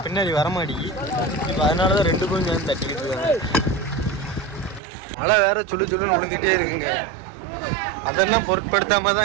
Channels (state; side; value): drops out; left; at 4.8 s